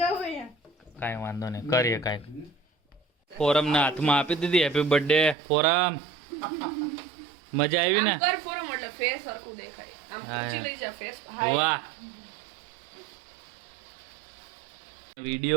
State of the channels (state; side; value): drops out; left; at 5.4 s